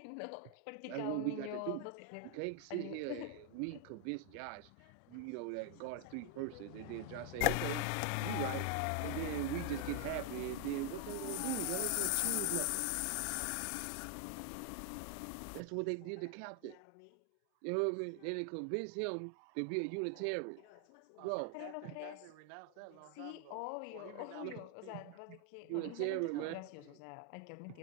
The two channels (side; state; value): both; different; correlation 0.01